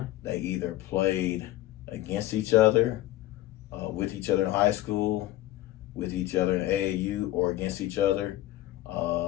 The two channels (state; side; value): quieter; right; 15.3 dB